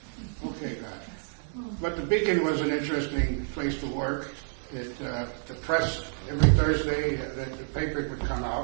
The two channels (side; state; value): left; silent; 58 dB below the other